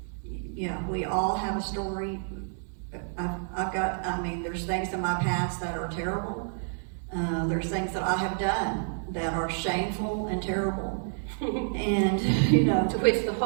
we all have a story. There's things in my past that are terrible. There's things that I have done that are shameful and terrible. And, To which the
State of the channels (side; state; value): left; silent; digital silence